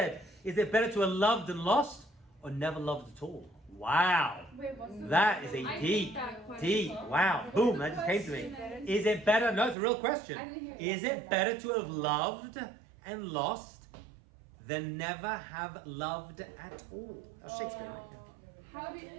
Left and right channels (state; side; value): drops out; left; at 9.8 s